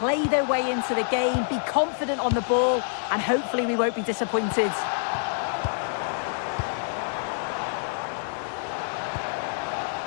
their way into the game, be confident on the ball, and hopefully we won't be disappointed.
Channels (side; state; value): right; silent; digital silence